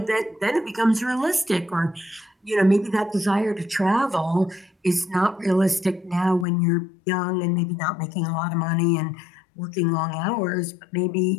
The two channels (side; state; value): right; drops out; at 6.5 s